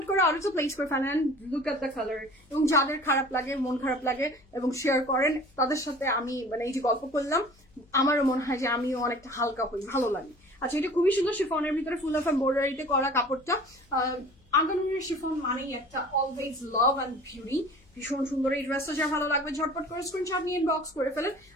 করে আরো তো প্লেস করে ফেলেন, লুক এট দ্য কালার। এবং যাদের খারাপ লাগে, মন খারাপ লাগে এবং শেয়ার করেন, তাদের সাথে আমি মানে এই যে গল্প করলাম, আমারও মনে হয় যে আমিও অনেকটা হালকা হই, ভালো লাগে। আচ্ছা এটা খুবই সুন্দর, শিফনের ভিতরে ফুল অফ এমব্রয়ডারিতে করা কাপড়টা। আগানুরের শিফন মানেই একটা অলওয়েজ লাভ অ্যান্ড বিউটি, ভীষণ সুন্দর এই ড্রেসটা। যা ভালো লাগবে ঝটপট করে স্ক্রিনশট নিয়ে ইনবক্স করে ফেলেন।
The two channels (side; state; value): left; noise; hum, 30 dB below the sound